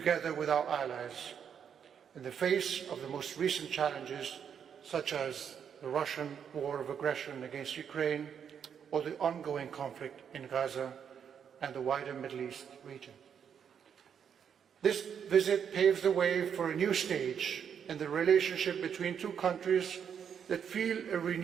with our allies in the face of the most recent challenges such as the Russian war of aggression against Ukraine or the ongoing conflict in Gaza and the wider Middle East region. This visit paves the way for a new stage in the relationship between two countries that feel a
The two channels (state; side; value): quieter; left; 7.8 dB